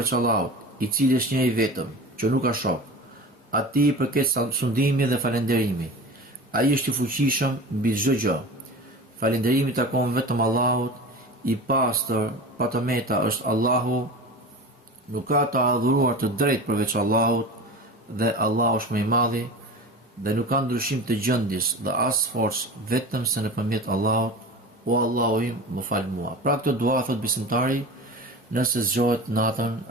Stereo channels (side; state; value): both; normal; correlation 0.33